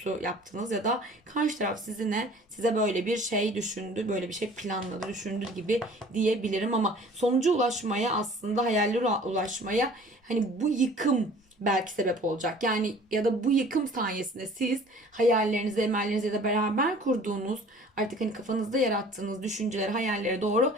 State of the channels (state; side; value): normal; both; correlation 0.49